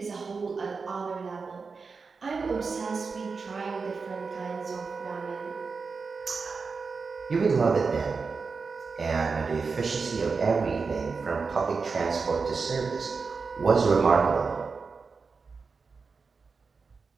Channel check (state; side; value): quieter; left; 4.8 dB